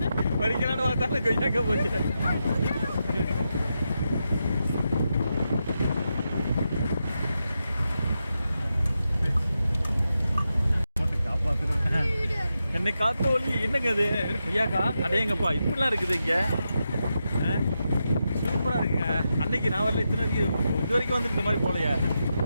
பறிக்கலான்னு பார்த்தாலும் கொய்யாக்கா போச்சு. என்னை காத்து ஒளி என்னங்க அது கொய்யாக்கா அடையங்கப்பா இப்படிலாம் இருக்குது இங்க. சூப்பரா இருக்குங்க. அன்னைக்கு நான் வரல, இது வரைக்கும் வந்து இந்த மாதிரி போலையா.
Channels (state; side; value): inverted; both; correlation -0.87